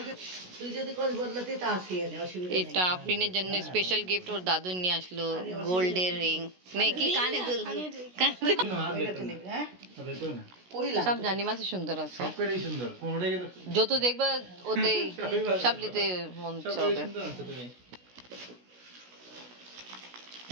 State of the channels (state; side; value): late; left; 16 ms